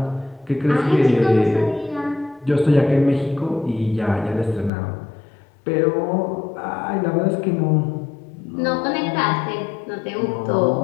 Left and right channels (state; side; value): drops out; right; at 4.7 s